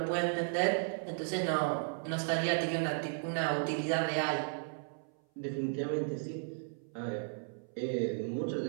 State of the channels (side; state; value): left; silent; 55 dB below the other